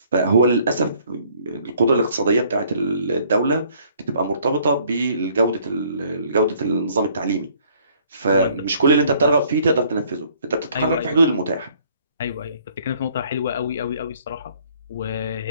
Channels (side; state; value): both; inverted; correlation -0.60